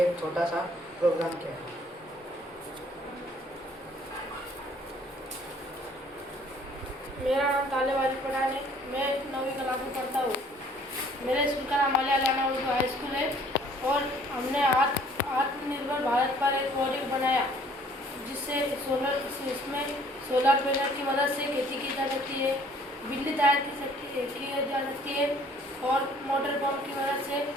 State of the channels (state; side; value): normal; both; correlation 0.58